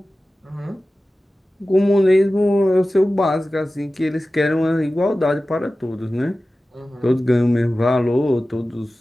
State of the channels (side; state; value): both; normal; correlation 0.95